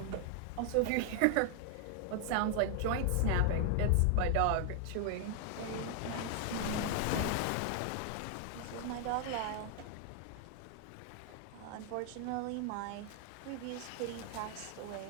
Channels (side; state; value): both; different; correlation 0.00